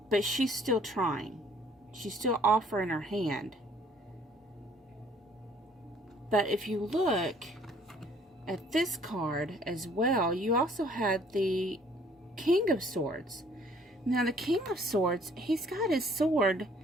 But she's still trying. She's still offering her hand. But if you look at this card as well, you also had the King of Swords. Now the King of Swords, he's got his sword,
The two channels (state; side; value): normal; both; correlation 0.59